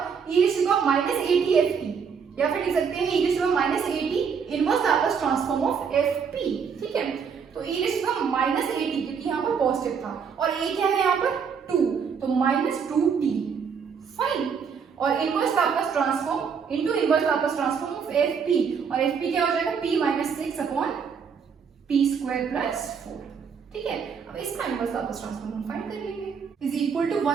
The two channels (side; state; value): left; quieter; 6.4 dB